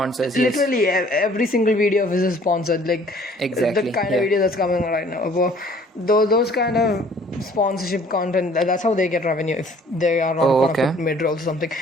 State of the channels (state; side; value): normal; both; correlation 0.55